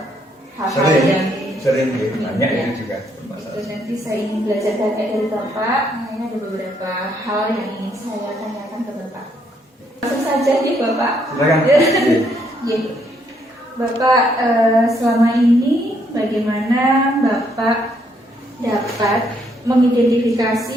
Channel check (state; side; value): normal; both; correlation 0.72